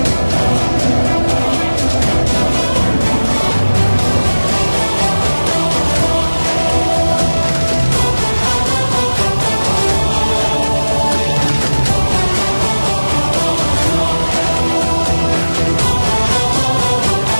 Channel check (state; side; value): inverted; both; correlation -1.00